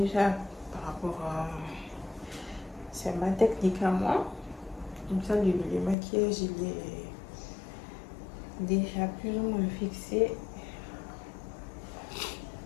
par rapport à... C'est ma technique à moi. Comme ça, le maquillage, il est déjà plus ou moins fixé.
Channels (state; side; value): drops out; right; at 6.0 s